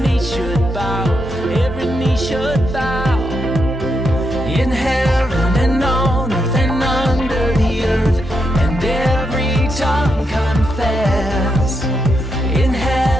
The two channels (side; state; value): both; normal; correlation 0.82